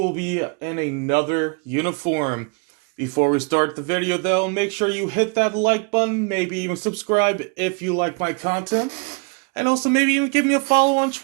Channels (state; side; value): quieter; left; 33.2 dB